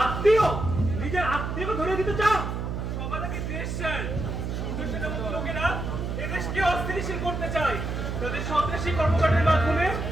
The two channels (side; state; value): right; noise; hum, 3 dB below the sound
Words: আত্মীয়? নিজের আত্মীয়কে ধরে দিতে চান? সমাজকে দেশ স্যার। সূর্য সেনের মতো লোকেরা এদেশকে অস্থিতিশীল করতে চায়। তাদের সন্ত্রাসী কর্মকাণ্ডের মাধ্যমে